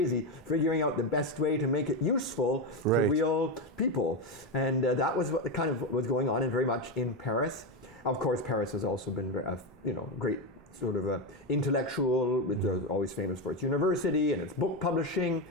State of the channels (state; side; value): normal; both; correlation 0.11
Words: figuring out the best way to make it useful to real people. And that was what kind of was going on, and very much in Paris. Of course, Paris has also been great sort of intellectual. It's always famous for its university and its book publishing,